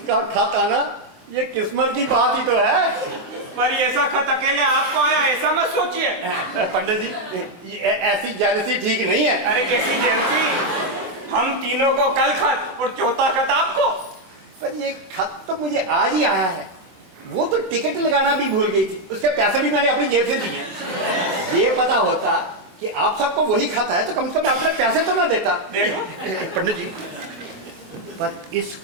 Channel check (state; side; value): late; left; 24 ms